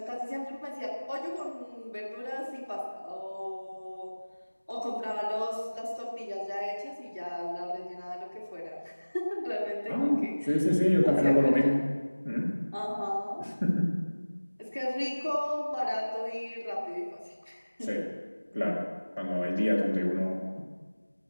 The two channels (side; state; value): both; inverted; correlation -1.00